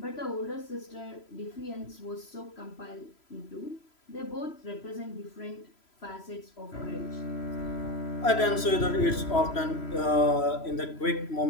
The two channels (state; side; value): late; right; 3.0 ms